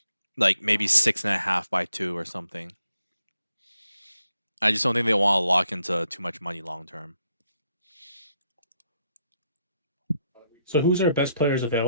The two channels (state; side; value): inverted; both; correlation -0.76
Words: Like maybe 6.5 by 2 or something. I just don't think they want to lock into too much money long term. So who's our best players